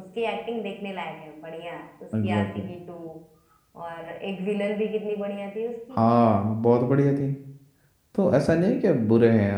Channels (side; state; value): both; identical; correlation 1.00